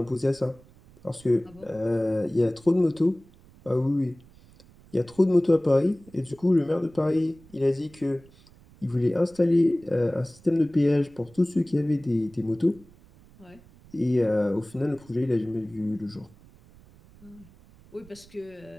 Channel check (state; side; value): noise; right; rumble, 25 dB below the sound